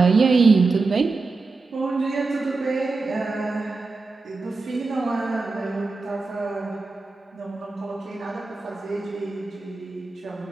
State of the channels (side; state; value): left; quieter; 3.8 dB